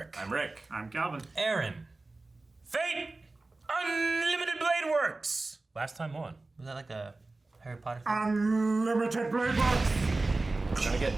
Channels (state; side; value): quieter; left; 3.2 dB